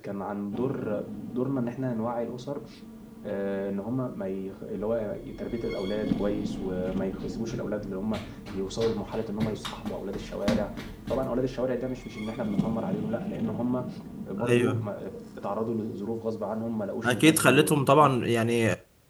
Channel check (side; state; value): both; identical; correlation 1.00